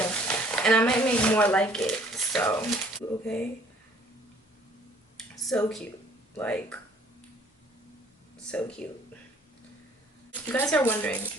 and I might make more like it. So okay, so cute, like so cute. You guys are wondering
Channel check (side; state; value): both; normal; correlation 0.58